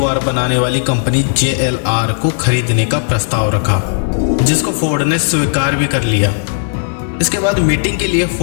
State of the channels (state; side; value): silent; right; digital silence